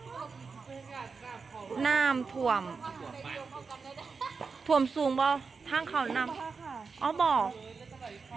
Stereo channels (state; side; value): quieter; left; 4.9 dB